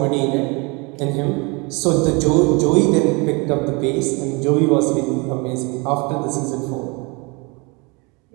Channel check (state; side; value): quieter; left; 29.1 dB